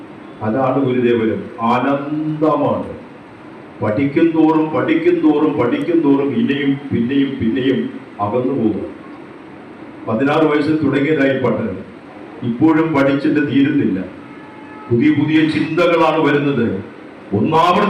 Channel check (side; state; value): both; identical; correlation 1.00